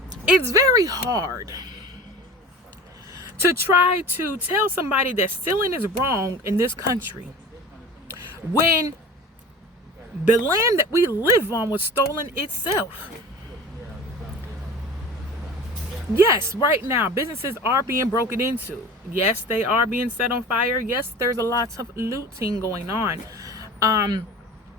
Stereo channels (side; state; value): both; normal; correlation 0.38